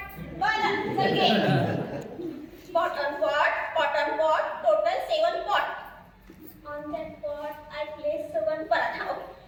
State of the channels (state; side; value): identical; both; correlation 1.00